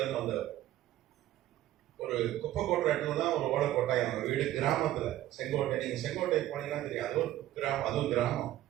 இருந்து வந்தவர். ஒரு குப்பை கொட்டுற இடத்துல தான் ஒரு ஓலை கொட்டாய். அவங்க வீடு கிராமத்துல, செங்கோட்டை. நீங்க செங்கோட்டை போனீங்கன்னா தெரியும், அது ஒரு கிராமம், அதுவும் கிராமம்.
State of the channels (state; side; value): quieter; left; 14.0 dB